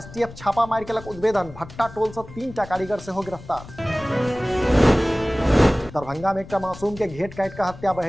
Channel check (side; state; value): left; noise; rumble, 16 dB below the sound